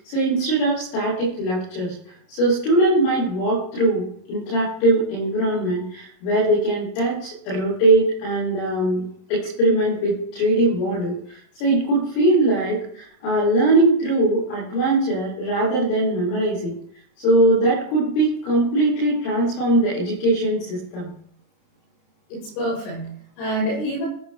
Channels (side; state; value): right; late; 32 ms